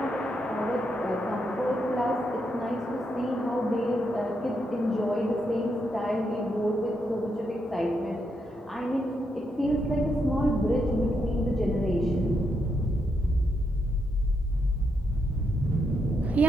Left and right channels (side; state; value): both; normal; correlation 0.80